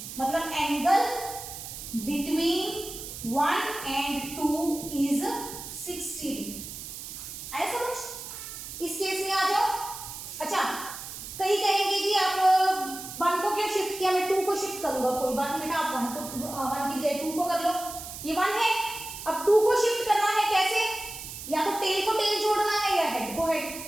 मतलब angle between 1 and 2 is 60 degree. आया समझ? इस केस में आ जाओ। अच्छा, कई कहेंगे जी आप 1 को क्यों शिफ्ट किया, मैं 2 को शिफ्ट करूंगा, कोई बात नहीं बेटा, आप 1 की बजाय 2 को कर लो, ये 1 है, अब 2 को शिफ्ट करना है कैसे, या तो टेल को टेल जोड़ना है या हेड को हेड,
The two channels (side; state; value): right; noise; hiss, 10 dB below the sound